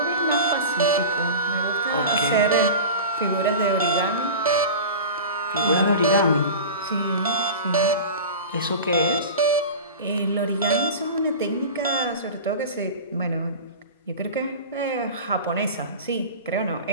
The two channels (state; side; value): inverted; both; correlation -0.32